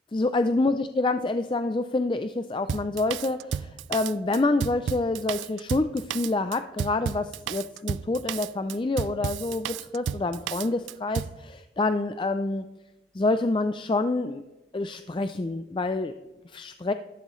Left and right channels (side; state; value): both; normal; correlation 0.60